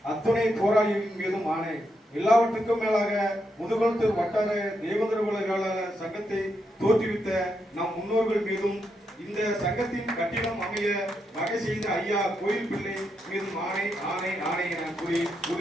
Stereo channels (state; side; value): normal; both; correlation 0.82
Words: அத்துணை போராளிகளின் மீதும் ஆணை. எல்லாவற்றுக்கும் மேலாக முதுகுளத்தூர் வட்டார தேவேந்திரகுல வேளாளர் சங்கத்தை தோற்றுவித்த நம் முன்னோர்கள் மீதும் இந்த சங்கத்தின் கட்டிடம் அமைய வகை செய்த ஐயா கோயில் பிள்ளை மீதும் ஆணை ஆணை ஆணை என கூறி